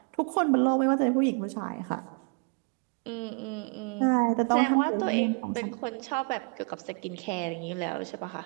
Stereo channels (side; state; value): left; quieter; 34.5 dB